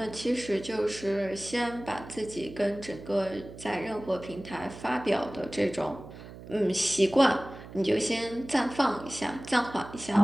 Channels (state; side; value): noise; right; hum, 15 dB below the sound